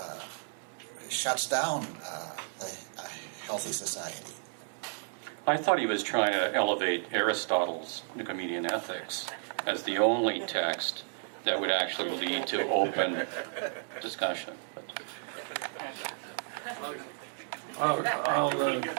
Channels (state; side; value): silent; left; digital silence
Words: shuts down a healthy society. I thought he was trying to elevate Aristotle's Nicomachean Ethics as the only text that would actually lead to open discussion.